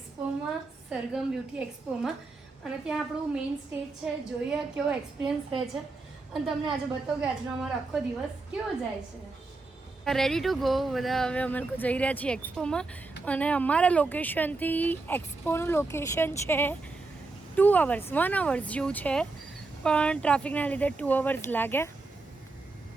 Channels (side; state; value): left; quieter; 3.5 dB